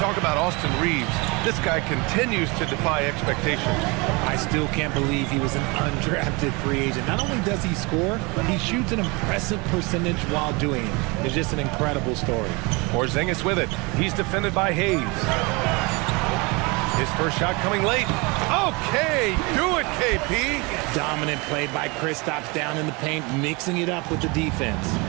about Austin Reeves, this guy continues to defy expectations. I still can't believe he was an undrafted free agent. Not only does he score, he shoots an impressive percentage while doing it. It's just an incredible story. Porzingis with it. He's defended by Hayes. His first shot coming late. Okay, do it, KP. Dominant play by Kristaps down in the paint, mixing it up with the defense.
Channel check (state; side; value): quieter; left; 27.4 dB